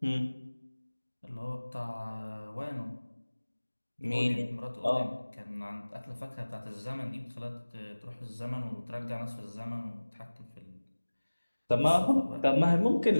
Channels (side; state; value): both; inverted; correlation -1.00